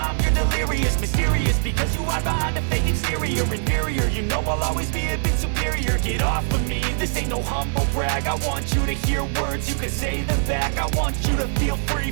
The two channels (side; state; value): left; silent; digital silence